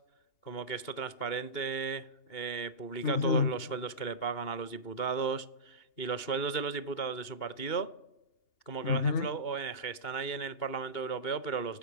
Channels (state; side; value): late; right; 2.8 ms